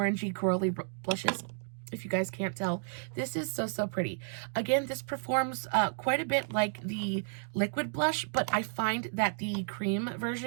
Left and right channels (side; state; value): left; silent; digital silence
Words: corally blushes. If you guys can't tell, this is so, so pretty. Again, this performs quite a bit like the liquid blush, but I find that the cream